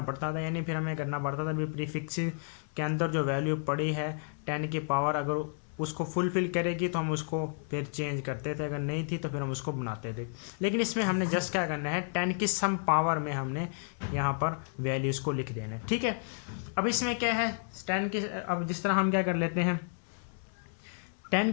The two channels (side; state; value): right; silent; digital silence